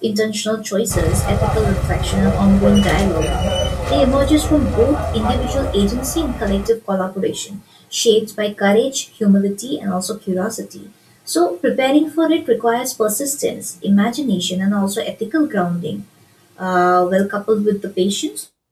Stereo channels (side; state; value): both; identical; correlation 1.00